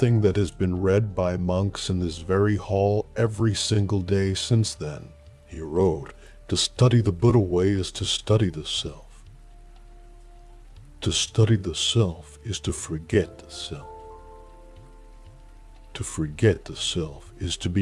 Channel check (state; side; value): identical; both; correlation 1.00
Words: that has been read by monks in this very hall every single day since then. He wrote, "To study the Buddha way is to study the self. To study the self is to forget the self. To forget the self is to